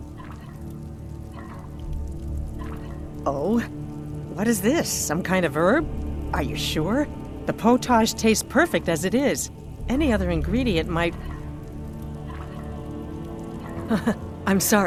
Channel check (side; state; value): both; identical; correlation 1.00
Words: Oh, what is this? Some kind of herb? Are you sure? The potage tastes perfect as it is. Any other ingredient might... I'm